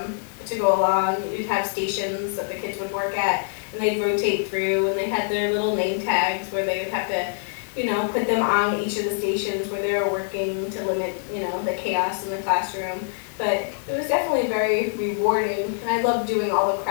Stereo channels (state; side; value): silent; right; digital silence